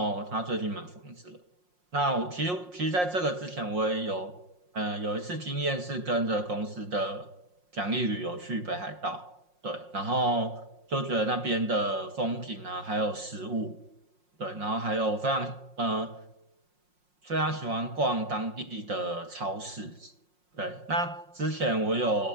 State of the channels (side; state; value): left; late; 5.6 ms